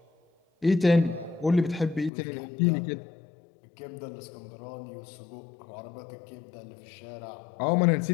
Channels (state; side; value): drops out; right; at 2.1 s